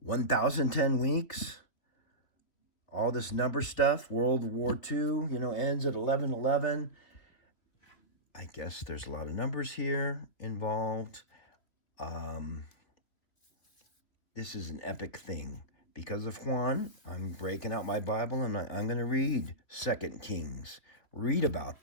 weeks. All this number stuff. World War II, ends at 11/11. I guess there's a lot of numbers here involved. This is an epic thing. Because of Juan, I'm breaking out my Bible and I'm going to read 2 Kings. Read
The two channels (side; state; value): right; late; 2.8 ms